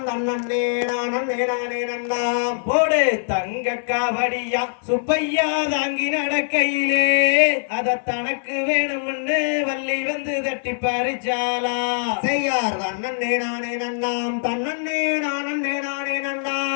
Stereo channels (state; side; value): silent; right; digital silence